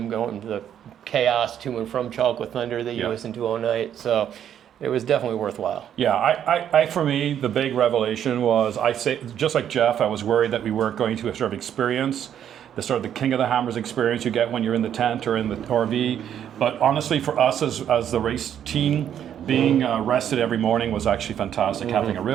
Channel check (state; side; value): quieter; left; 9.7 dB